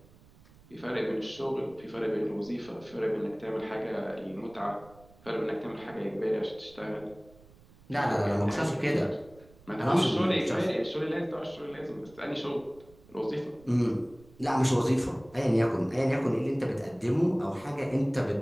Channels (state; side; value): noise; right; rumble, 25 dB below the sound